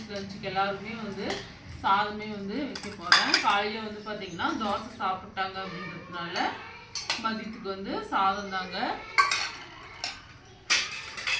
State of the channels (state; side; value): identical; both; correlation 1.00